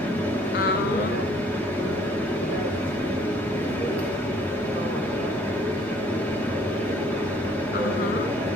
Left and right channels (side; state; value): both; normal; correlation 0.59